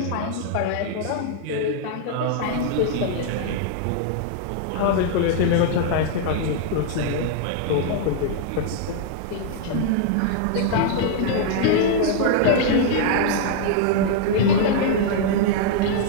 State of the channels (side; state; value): both; different; correlation -0.01